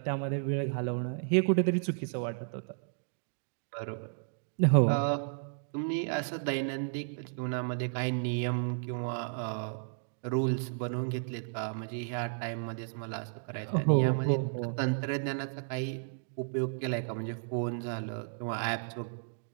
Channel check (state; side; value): silent; left; digital silence